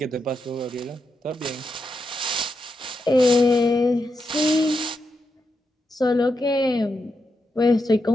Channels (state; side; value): normal; both; correlation 0.85